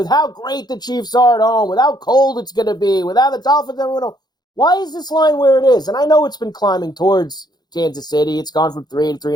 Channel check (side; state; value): right; late; 0.20 ms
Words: how great the Chiefs are at home, with how cold it's going to be, with how the Dolphins everyone know? Why is this line where it is? And I know it's been climbing towards Kansas City. It's gone from 3 to